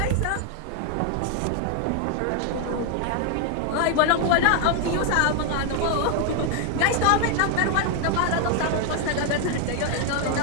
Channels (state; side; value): different; both; correlation 0.00